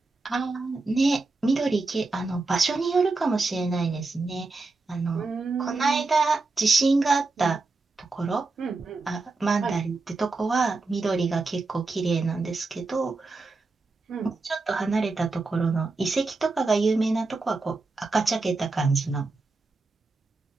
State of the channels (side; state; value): left; quieter; 3.6 dB